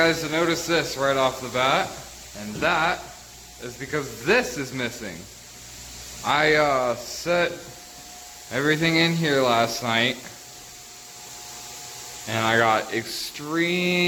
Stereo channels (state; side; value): identical; both; correlation 1.00